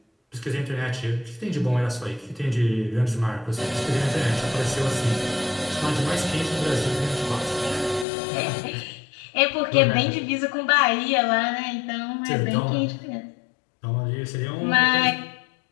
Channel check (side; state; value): right; drops out; at 8.1 s